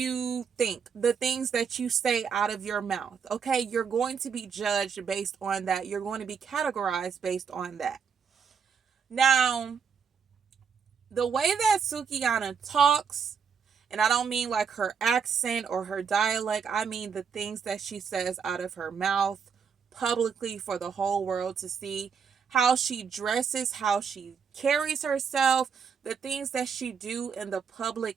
think, the things that you say out of your mouth. Okay, you're going to be judged based on that. You're going to be categorized based on that. Now, the way that Sukihana talks, and I don't mean like her accent or her dialect, I mean the things that she says out of her mouth publicly for the whole world to see, how she dresses, how she carries herself, the things that she do in the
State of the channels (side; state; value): left; quieter; 6.5 dB